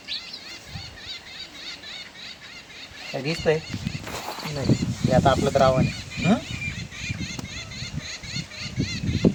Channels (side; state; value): both; identical; correlation 1.00